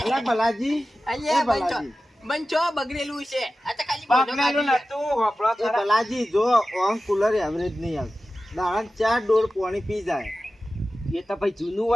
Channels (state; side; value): normal; both; correlation 0.94